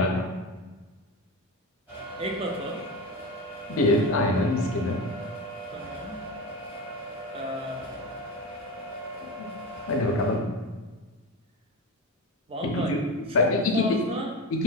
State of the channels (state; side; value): normal; both; correlation 0.23